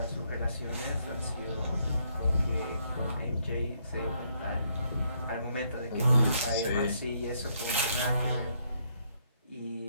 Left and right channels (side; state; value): both; inverted; correlation -0.72